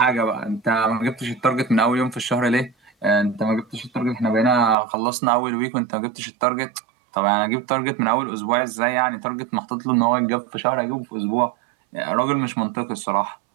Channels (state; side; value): drops out; left; at 4.8 s